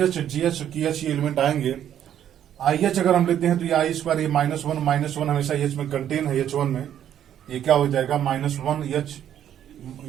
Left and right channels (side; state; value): left; quieter; 10.3 dB